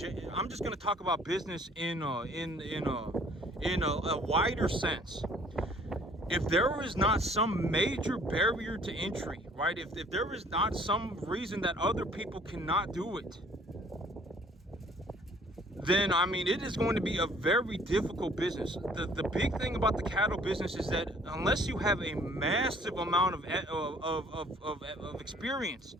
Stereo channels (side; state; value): both; normal; correlation 0.57